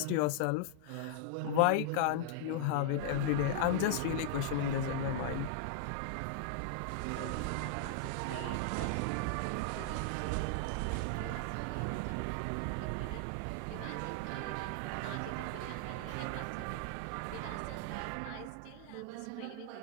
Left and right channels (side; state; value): both; different; correlation -0.01